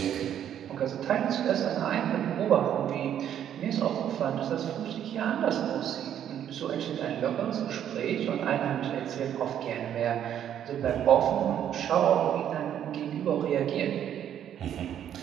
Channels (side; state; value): left; quieter; 10.0 dB